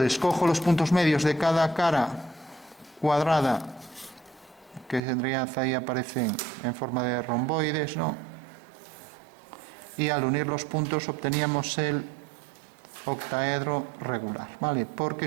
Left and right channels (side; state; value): left; drops out; at 5.0 s